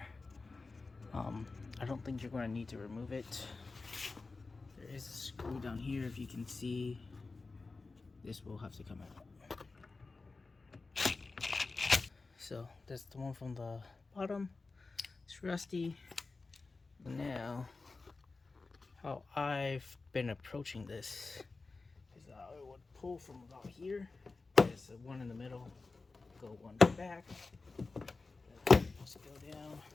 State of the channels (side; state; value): right; quieter; 3.8 dB